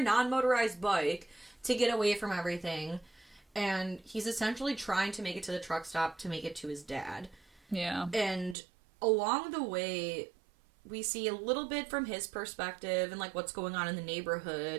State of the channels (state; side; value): drops out; left; at 8.6 s